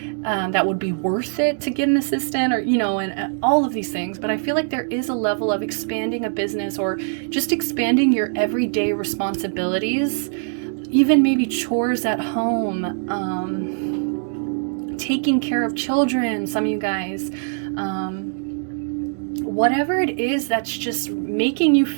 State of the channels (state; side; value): silent; left; digital silence